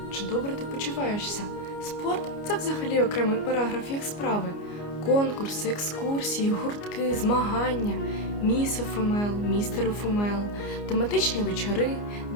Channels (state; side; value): late; right; 29 ms